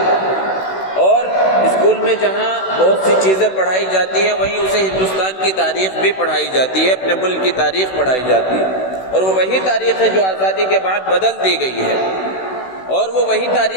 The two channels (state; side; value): late; right; 16 ms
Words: اور اسکول میں جہاں بہت سی چیزیں پڑھائی جاتی ہیں وہیں اسے ہندوستان کی تاریخ بھی پڑھائی جاتی ہے، اپنے ملک کی تاریخ پڑھائی جاتی ہے، اور وہ وہی تاریخ ہے جو آزادی کے بعد بدل دی گئی ہے، اور وہ وہی